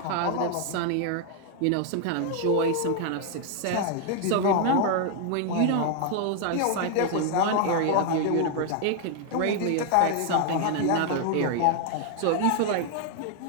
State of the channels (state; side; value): different; both; correlation 0.00